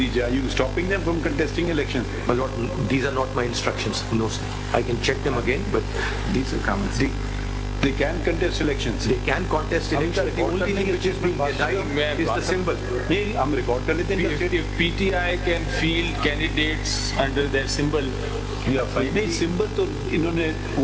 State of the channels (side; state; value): both; identical; correlation 1.00